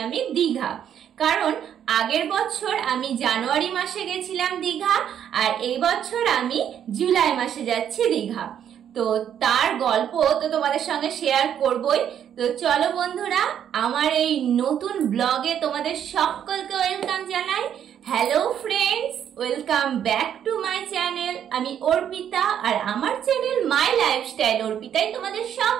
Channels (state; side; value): quieter; left; 9.4 dB